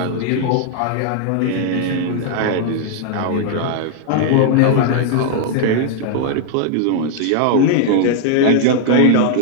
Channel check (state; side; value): different; both; correlation -0.01